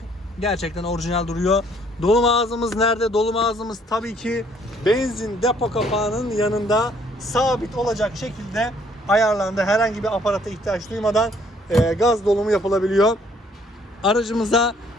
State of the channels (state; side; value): normal; both; correlation 0.63